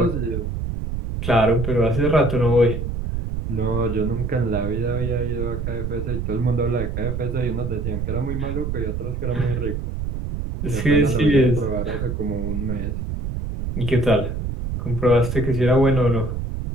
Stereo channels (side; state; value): right; noise; rumble, 3 dB below the sound